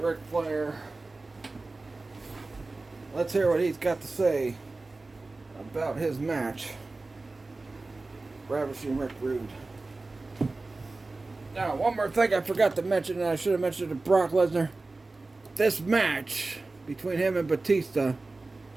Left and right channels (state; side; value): quieter; left; 3.4 dB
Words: Flair. Let's hear what he's got to say about his match. Ravishing Rick Rude. Now, one more thing I forgot to mention, and I should have mentioned to Brock Lesnar. This match between him and Batista